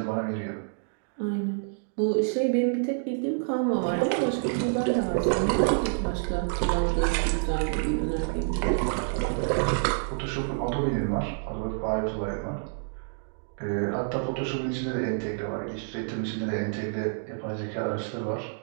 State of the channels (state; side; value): silent; left; digital silence